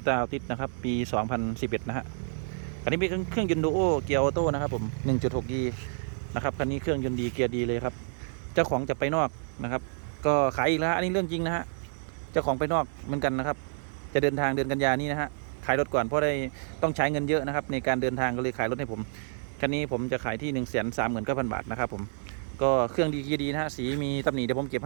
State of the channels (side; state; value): left; silent; 59 dB below the other